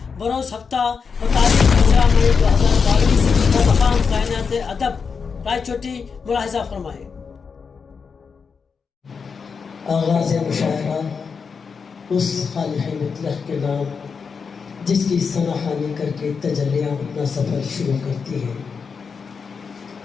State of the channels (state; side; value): quieter; right; 5.7 dB